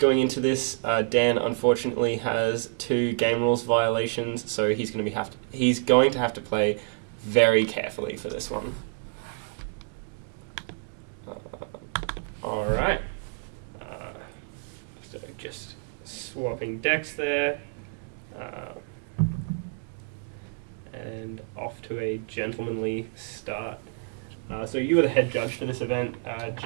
into this, Dan unfortunately has 2 game rules violations, so he's going to have to play very carefully for this one. All right. So just swapping decks there. And off to a gentlemanly start. So you were the head judge for this event,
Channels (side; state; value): left; silent; digital silence